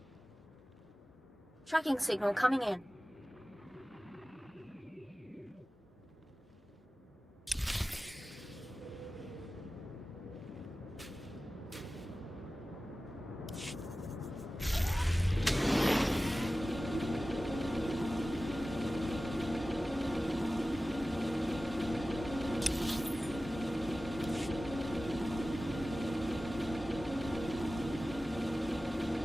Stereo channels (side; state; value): both; normal; correlation 0.96